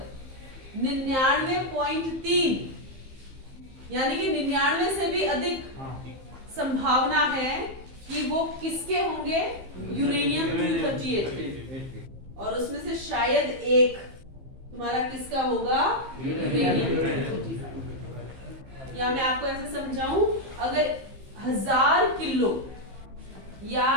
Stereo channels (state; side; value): late; left; 15 ms